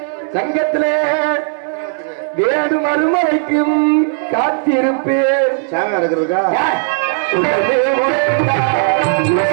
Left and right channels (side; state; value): left; silent; 69 dB below the other